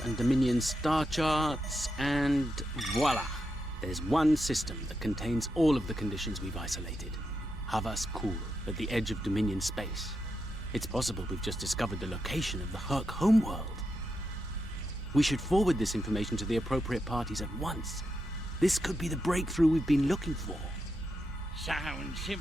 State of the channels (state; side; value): normal; both; correlation 0.85